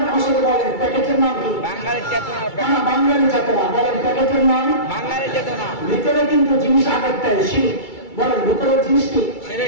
আমার সাথে বলেন, প্যাকেটের নাম কি? বাঙালি চেতনা। বাঙালি চেতনা। বলেন প্যাকেটের নাম বাঙালি চেতনা। ভিতরে কিন্তু জিনিস আগেরটাই শিরিক। বলেন ভিতরের জিনিস কি?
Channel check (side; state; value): right; late; 2.3 ms